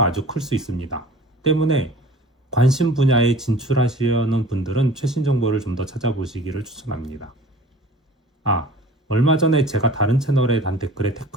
아주 클 수 있습니다. 때문에 관심 분야에 진출하시려는 분들은 최신 정보를 좀 더 찾아보시기를 추천합니다. 얼마 전에 제가 다른 채널에 단 댓글에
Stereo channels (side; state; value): both; normal; correlation 0.44